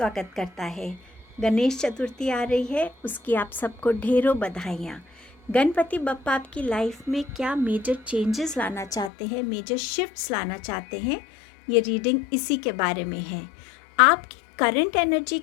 करता है। गणेश चतुर्थी आ रही है, उसकी आप सबको ढेरों बधाइयाँ। गणपति बप्पा आपकी लाइफ में क्या मेजर चेंजेस लाना चाहते हैं, मेजर शिफ्ट्स लाना चाहते हैं, ये रीडिंग इसी के बारे में है। आपकी करंट एनर्जी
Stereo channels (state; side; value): drops out; right; at 9.1 s